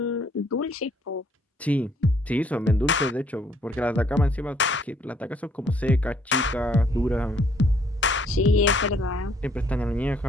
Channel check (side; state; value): both; normal; correlation 0.65